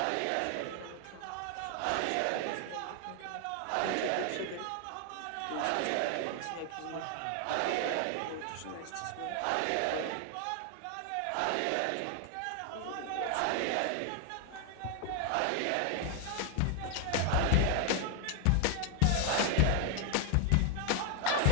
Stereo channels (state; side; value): different; both; correlation 0.00